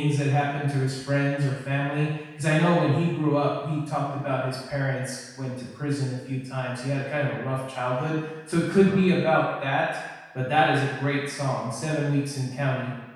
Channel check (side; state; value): both; identical; correlation 1.00